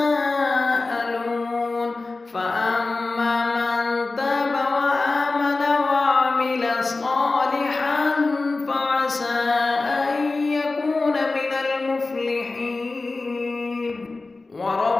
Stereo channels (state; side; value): quieter; right; 3.5 dB